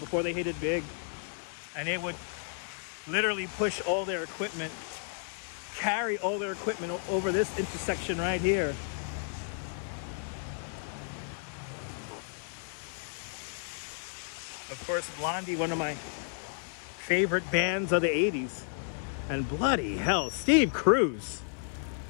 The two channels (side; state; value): right; silent; 56 dB below the other